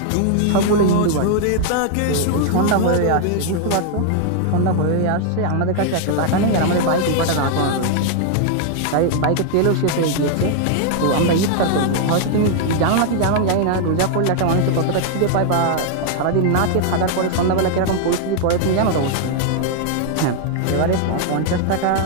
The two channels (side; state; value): both; different; correlation 0.00